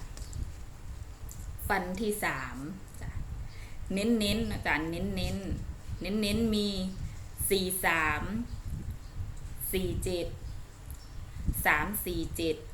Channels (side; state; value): both; identical; correlation 1.00